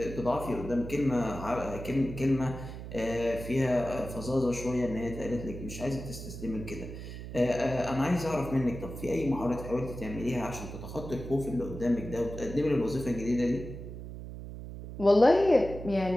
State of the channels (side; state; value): right; noise; hum, 10 dB below the sound